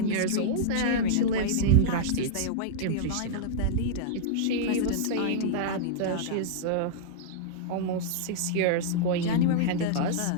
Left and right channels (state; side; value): different; both; correlation -0.02